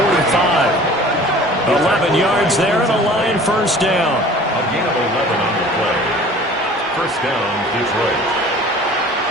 11 yards there and a line first down. A gain of 11 on the play. First down, Detroit.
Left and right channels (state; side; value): normal; both; correlation 0.46